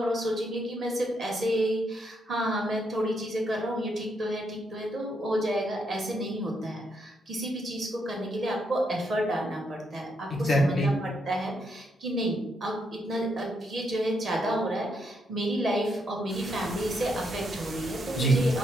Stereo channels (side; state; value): both; normal; correlation 0.77